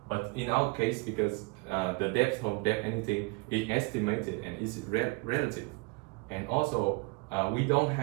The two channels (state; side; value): quieter; left; 27.0 dB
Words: But in our case, because the depth of anything is estimated and is relative, and also we don't